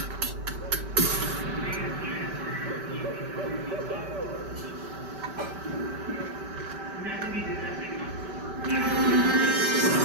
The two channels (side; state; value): left; late; 5.2 ms